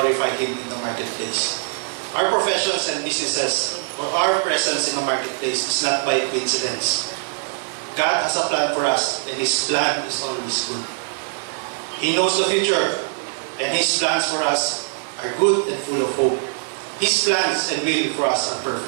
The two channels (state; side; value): silent; left; digital silence